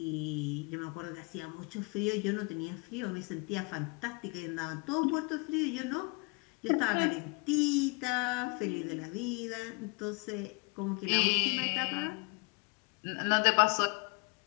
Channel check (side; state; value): right; quieter; 30.4 dB